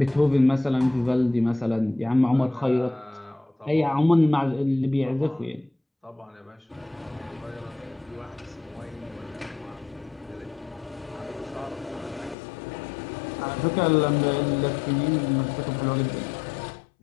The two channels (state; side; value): drops out; right; at 12.4 s